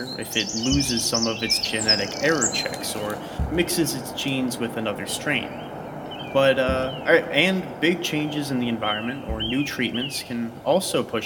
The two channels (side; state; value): both; identical; correlation 1.00